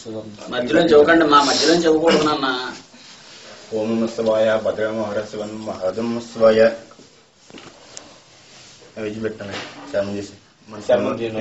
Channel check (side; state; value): both; identical; correlation 1.00